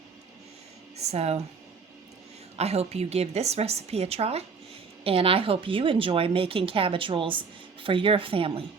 So I hope you give this recipe a try. And I hope you enjoy making cabbage rolls for your family.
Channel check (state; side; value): quieter; left; 5.2 dB